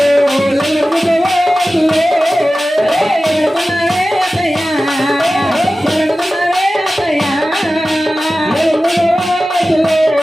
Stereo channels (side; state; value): both; normal; correlation 0.95